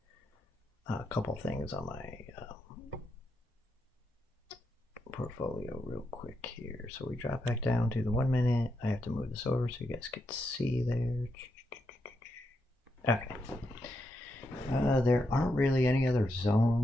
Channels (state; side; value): normal; both; correlation 0.82